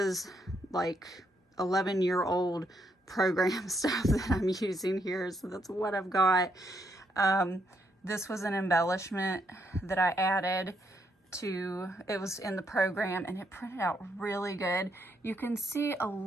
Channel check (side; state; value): both; normal; correlation 0.76